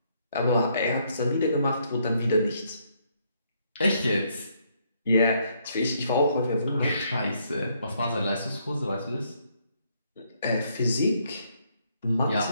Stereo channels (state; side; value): inverted; both; correlation -0.72